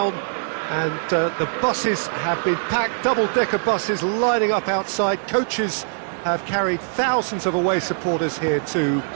and the buses have been packed, double-decker buses lining up outside, coaches have carried thousands of away supporters here too,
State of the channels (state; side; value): silent; left; digital silence